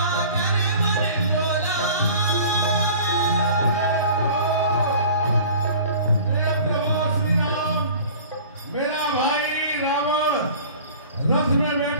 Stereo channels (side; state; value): both; inverted; correlation -0.43